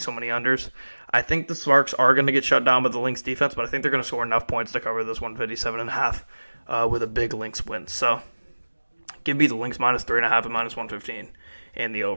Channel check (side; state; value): both; inverted; correlation -1.00